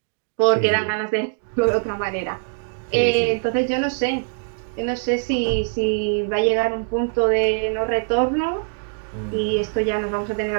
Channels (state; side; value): silent; left; digital silence